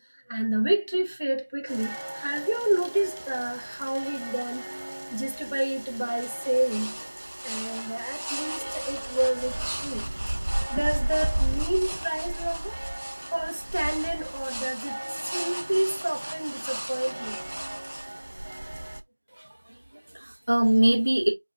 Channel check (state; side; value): inverted; both; correlation -1.00